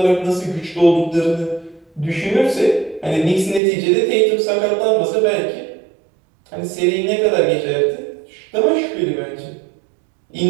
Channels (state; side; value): drops out; left; at 3.6 s